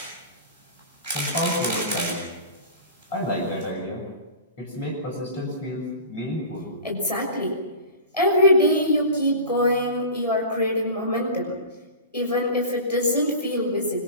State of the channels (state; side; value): inverted; both; correlation -0.35